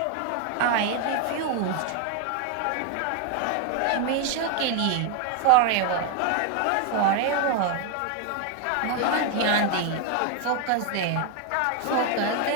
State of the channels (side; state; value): both; different; correlation 0.01